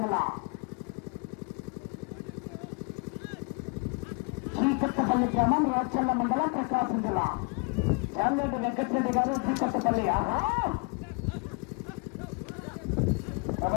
జిల్లా. శ్రీకొత్తపల్లి గ్రామం రాచల్ల మండలం ప్రకాశం జిల్లా. చాలరెడ్డి వెంకటరెడ్డి గారు శ్రీకొత్తపల్లి.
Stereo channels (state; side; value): quieter; right; 32.8 dB